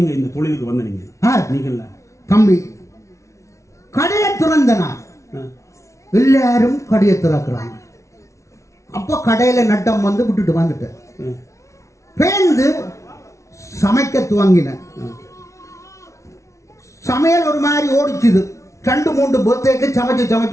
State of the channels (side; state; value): right; late; 0.14 ms